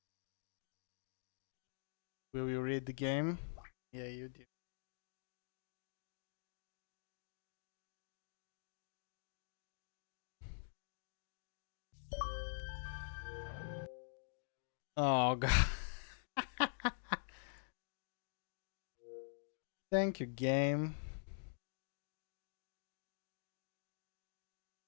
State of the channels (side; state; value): right; silent; digital silence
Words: Will you read the game? Yeah, you do. Oh god. Thank you, game.